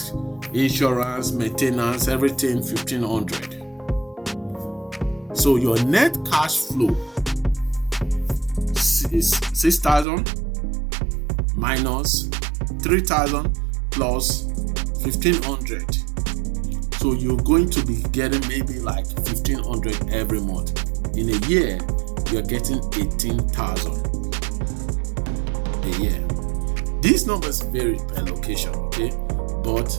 insurance, maintenance, everything 1,500. So your net cash flow is 6,000 minus 3,000 plus 1,500. So you're going to be getting maybe like 1,500 every month. In a year, you're getting 18,000 a year. These numbers vary per location, okay? But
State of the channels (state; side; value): drops out; left; at 10.1 s